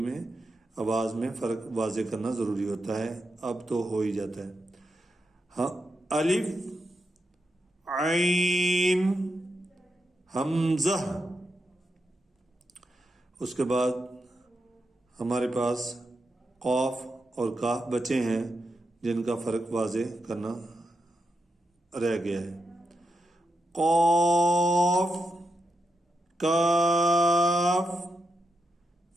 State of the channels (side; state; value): both; normal; correlation 0.86